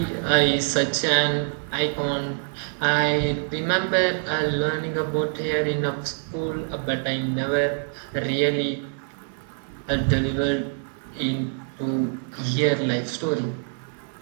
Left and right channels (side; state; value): left; silent; digital silence